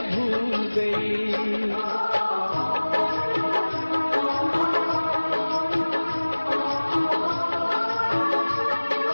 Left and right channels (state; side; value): inverted; both; correlation -1.00